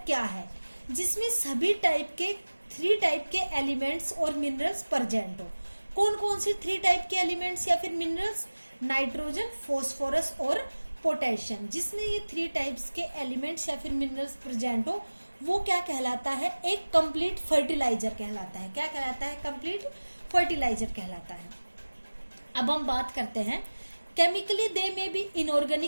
क्या है? जिसमें सभी टाइप के 3 टाइप के एलिमेंट्स और मिनरल्स प्रेजेंट हो। कौन कौन से 3 टाइप के एलिमेंट्स या फिर मिनरल्स? नाइट्रोजन, फॉस्फोरस और पोटेशियम। जिसमें ये 3 टाइप्स के एलिमेंट्स या फिर मिनरल्स प्रेजेंट हो वो क्या कहलाता है? एक कंप्लीट फर्टिलाइजर कहलाता है। क्या कहलाता है? कंप्लीट फर्टिलाइजर कहलाता है। अब हम बात करते हैं, केमिकली दे में भी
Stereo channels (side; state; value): both; inverted; correlation -1.00